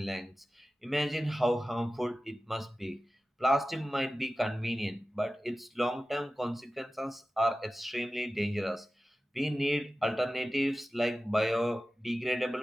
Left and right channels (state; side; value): normal; both; correlation 0.95